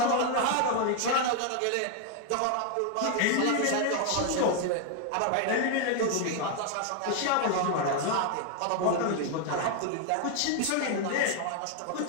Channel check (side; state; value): both; different; correlation 0.00